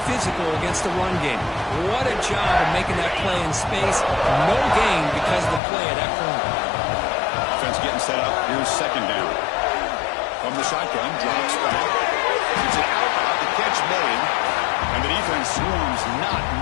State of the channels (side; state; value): right; drops out; at 5.6 s